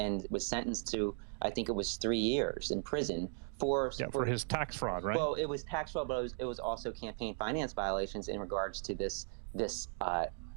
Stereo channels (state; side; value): silent; left; 53 dB below the other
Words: was sentenced to, I think it was 3 years in prison for his tax fraud, right? Well, it was tax fraud, but it was also campaign finance violations in regards to this